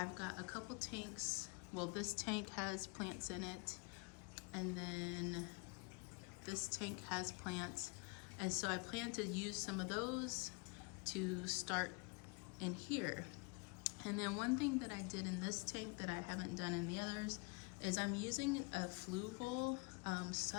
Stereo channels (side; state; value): right; quieter; 31.6 dB